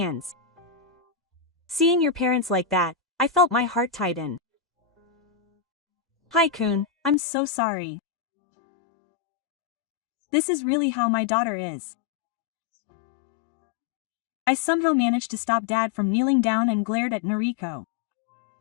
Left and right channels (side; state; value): right; drops out; at 7.2 s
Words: Seeing your parents like that, I felt my heart tighten. Hi Kun, I'm so sorry. This is really how my daughter is. I somehow managed to stop Dad from kneeling down and glared at Noriko.